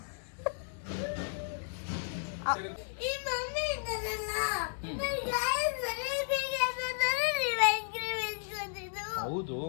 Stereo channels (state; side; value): silent; right; digital silence